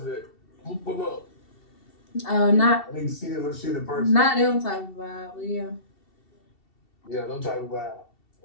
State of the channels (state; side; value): late; right; 2.7 ms